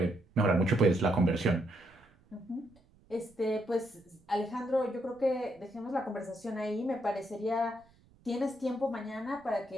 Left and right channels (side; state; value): right; noise; rumble, 29 dB below the sound